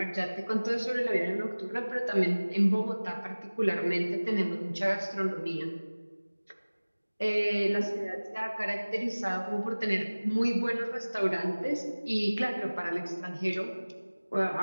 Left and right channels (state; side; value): inverted; both; correlation -1.00